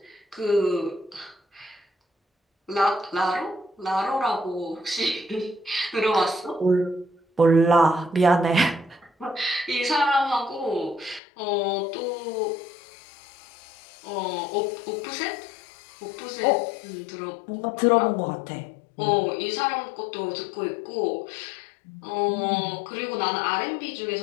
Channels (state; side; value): drops out; right; at 11.2 s